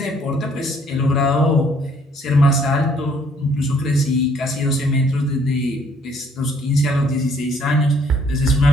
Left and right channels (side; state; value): both; normal; correlation 0.63